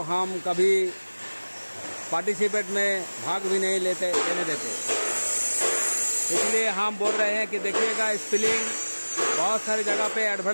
हम कभी पार्टिसिपेट में भाग भी नहीं लेने देते। इसलिए हम बोल रहे हैं कि देखिएगा, स्पेलिंग बहुत सारी जगह पे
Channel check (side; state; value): both; inverted; correlation -1.00